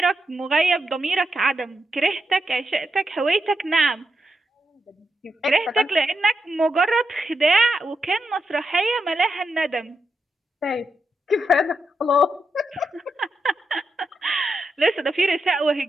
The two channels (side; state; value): both; normal; correlation 0.84